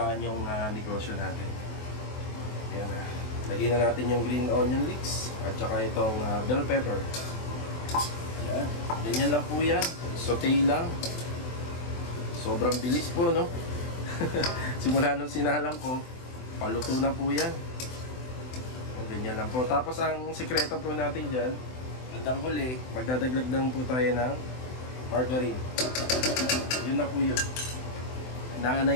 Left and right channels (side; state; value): right; late; 24 ms